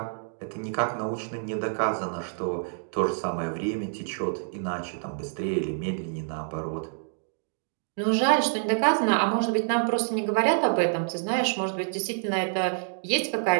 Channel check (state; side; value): silent; left; digital silence